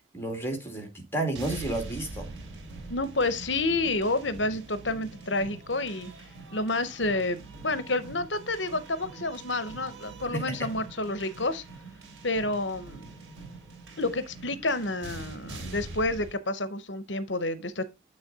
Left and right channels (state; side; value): normal; both; correlation -0.05